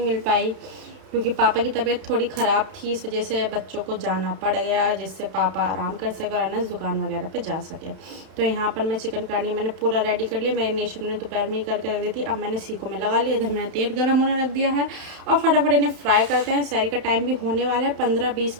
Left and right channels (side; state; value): left; late; 31 ms